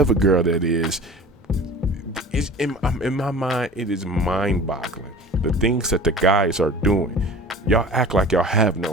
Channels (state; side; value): normal; both; correlation 0.41